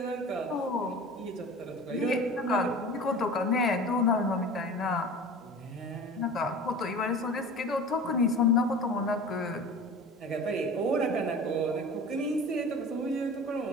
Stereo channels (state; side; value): normal; both; correlation 0.38